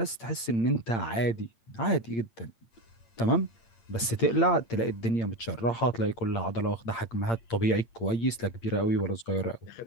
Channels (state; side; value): late; right; 8.7 ms